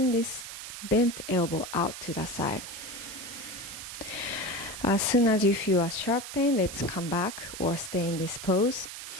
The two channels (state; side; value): noise; right; hiss, 10 dB below the sound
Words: this bent elbow out to the side. As soon as you feel a sharp pain, let's come back or stay in this pose.